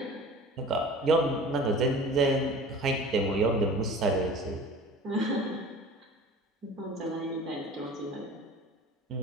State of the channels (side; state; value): both; normal; correlation 0.41